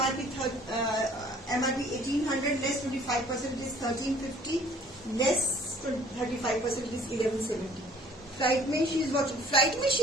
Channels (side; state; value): both; normal; correlation 0.55